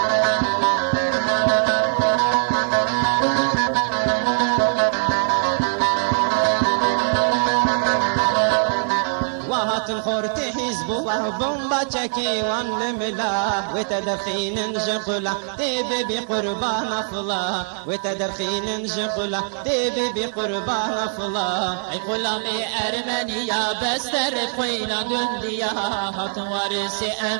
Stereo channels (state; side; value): silent; left; 64 dB below the other